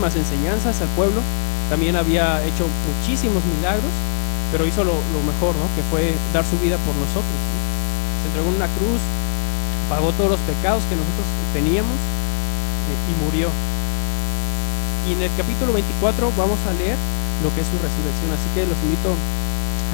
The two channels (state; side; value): silent; right; digital silence